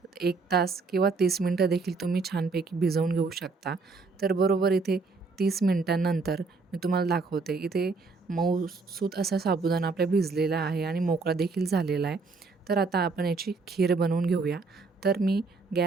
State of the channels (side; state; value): left; quieter; 4.2 dB